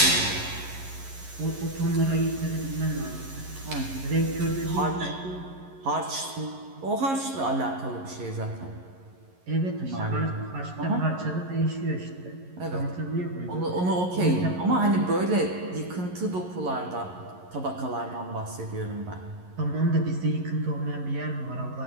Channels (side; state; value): left; late; 11 ms